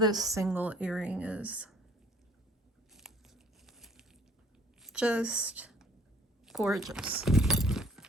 single earring is. Just gorgeous.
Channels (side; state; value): both; normal; correlation 0.56